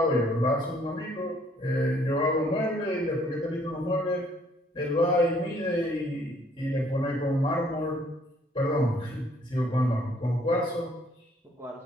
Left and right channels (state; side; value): normal; both; correlation 0.63